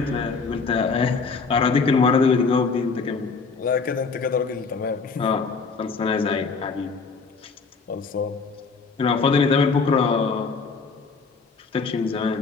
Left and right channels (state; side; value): quieter; right; 4.7 dB